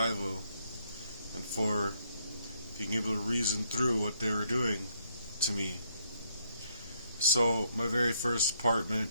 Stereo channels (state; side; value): inverted; both; correlation -0.72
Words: and for being able to reason through what they were doing to me. So my very first apartment,